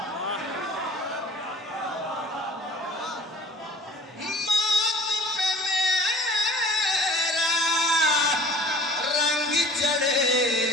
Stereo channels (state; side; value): normal; both; correlation 0.47